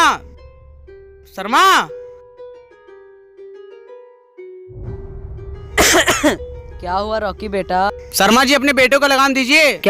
शर्मा। क्या हुआ रॉकी बेटा? शर्मा जी अपने बेटे को लगाम दीजिए।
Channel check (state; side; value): identical; both; correlation 1.00